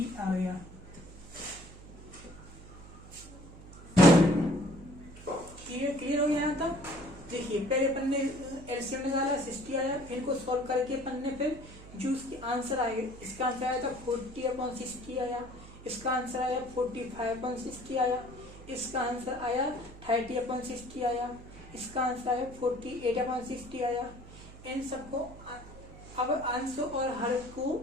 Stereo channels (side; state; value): right; noise; hum, 17 dB below the sound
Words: आ गया। क्लियर हो गया यहाँ तक। देखिए पहले अपन ने एलसीएम निकाला, 60 आया, फिर को सॉल्व करके अपन ने फिर जो उसकी आंसर आए, इसका आंसर आया था 40/60 आया, इसका आंसर आया 45/60 आया, इसका आंसर आया 30/60 आया, इसका आंसर आया 48/60 आया। इन सबको अब अंश और हर